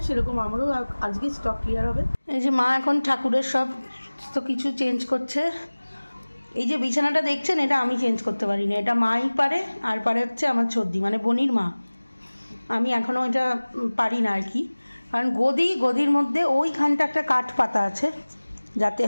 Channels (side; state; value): both; inverted; correlation -1.00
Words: সেরকম আমারও আজকে স্টক ক্লিয়ার হবে। এই যে মা এখন ঠাকুরের সব তো কিছু চেঞ্জ করছে। এই যে বিছানাটা দেখছেন, এটা আমি চেঞ্জ করতে পারি না, এটা মাই পারে, আর পারে হচ্ছে আমার ছর্দি মানে বনির মা। আমি এখনও এটা পারি না আর কি, কারণ গদির মধ্যে ওইখানটা একটা কাঠ পাতা আছে, যাতে